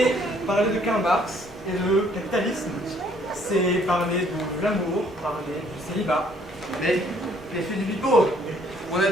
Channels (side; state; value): both; normal; correlation 0.63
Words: parler de Karl Marx et de capitalisme. C'est parler de l'amour, parler du célibat. Mais je suis du pipeau. Mon